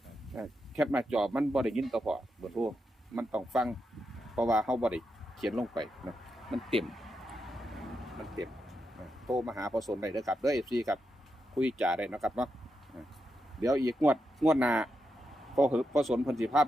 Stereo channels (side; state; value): both; normal; correlation 0.85